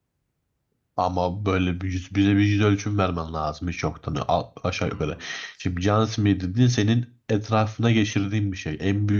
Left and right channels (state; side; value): identical; both; correlation 1.00